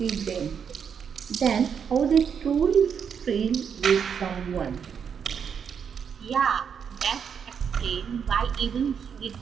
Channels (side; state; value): left; quieter; 7.2 dB